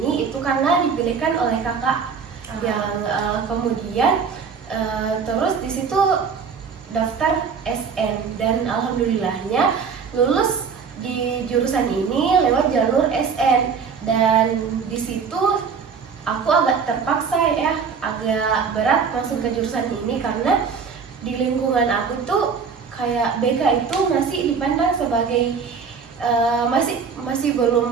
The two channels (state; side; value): quieter; left; 5.9 dB